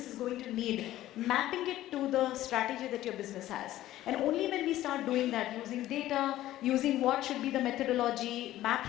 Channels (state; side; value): quieter; right; 14.4 dB